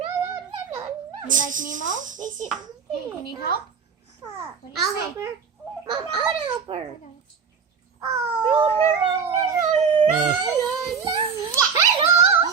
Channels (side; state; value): left; quieter; 6.1 dB